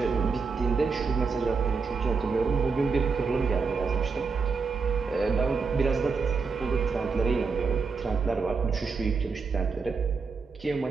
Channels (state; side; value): quieter; left; 4.8 dB